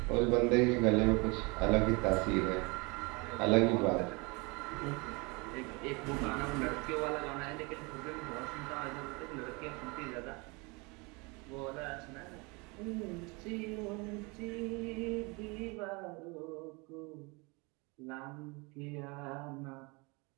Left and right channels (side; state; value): left; quieter; 28.0 dB